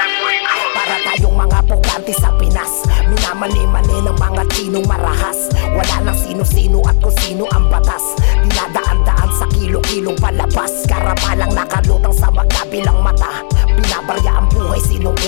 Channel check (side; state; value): right; silent; digital silence